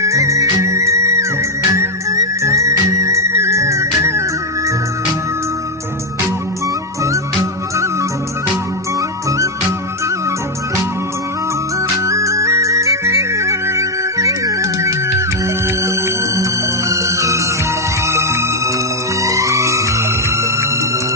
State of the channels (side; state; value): both; normal; correlation 0.02